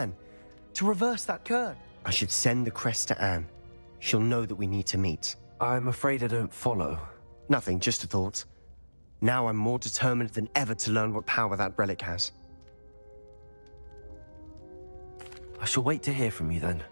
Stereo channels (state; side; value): inverted; both; correlation -1.00